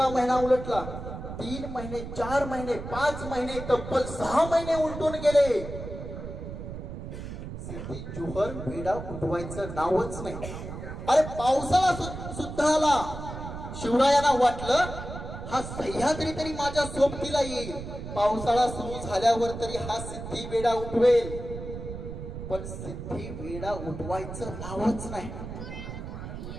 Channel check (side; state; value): right; noise; rumble, 9 dB below the sound